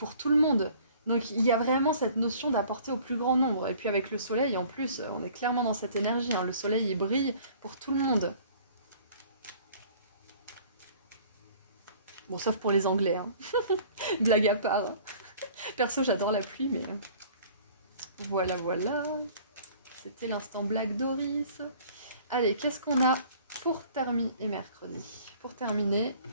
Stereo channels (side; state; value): both; inverted; correlation -0.51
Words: tout le monde. Donc il y a vraiment cette notion d'apporter au plus grand nombre. Et puis avec le soleil, en plus, on est clairement dans cette énergie, hein. Le soleil, il brille pour tout le monde. Bon, sauf pour les Anglais, hein. Blague à part. Perso, j'adore la pluie, mais... Voilà, voilà. C'était l'instant blague Doris. Allez, qu'est-ce qu'on a pour terminer et mercredi? Pour terminer,